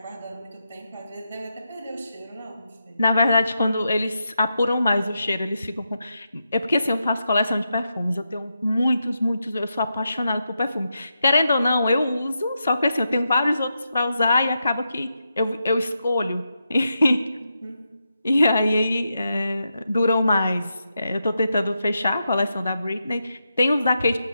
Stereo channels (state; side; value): inverted; both; correlation -0.86